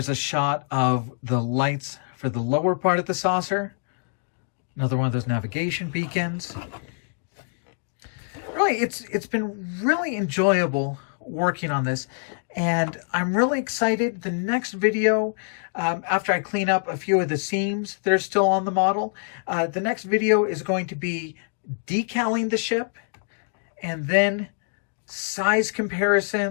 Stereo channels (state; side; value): silent; right; digital silence